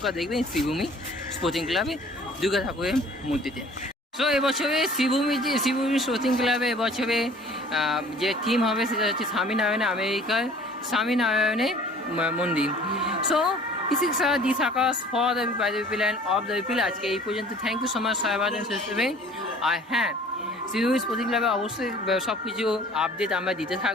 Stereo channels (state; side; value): normal; both; correlation 0.50